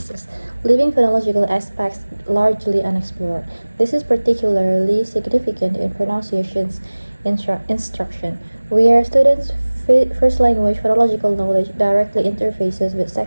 leaving phonological aspects largely unexplored. This is particularly significant in pronunciations instruction, where students' first language phonological knowledge directly interfaces with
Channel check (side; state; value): both; inverted; correlation -1.00